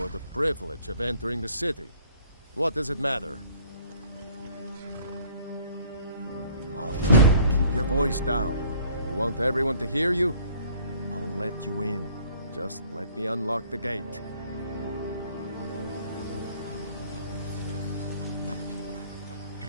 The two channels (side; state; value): both; inverted; correlation -0.56